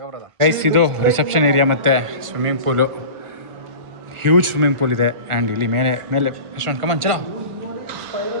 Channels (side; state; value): left; late; 1.4 ms